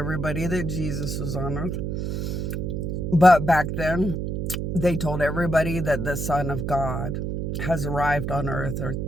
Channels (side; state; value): right; noise; hum, 2 dB below the sound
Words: that Jesus was on earth. But back then, they told everybody that the Son of God has arrived on earth, or